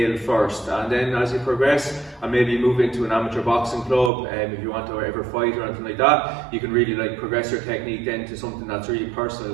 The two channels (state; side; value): drops out; left; at 4.1 s